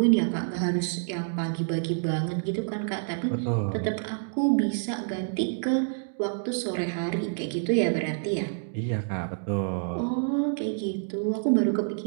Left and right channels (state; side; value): silent; left; digital silence